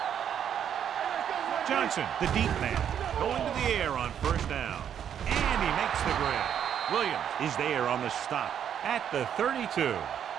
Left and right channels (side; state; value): left; quieter; 9.0 dB